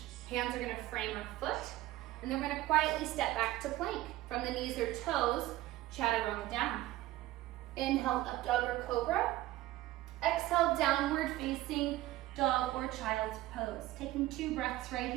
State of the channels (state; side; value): quieter; left; 16.1 dB